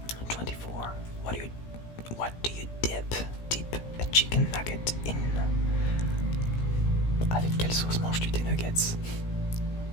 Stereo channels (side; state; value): right; late; 17 ms